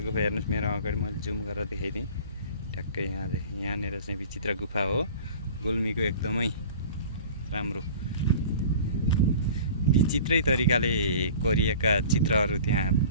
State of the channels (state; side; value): inverted; both; correlation -0.43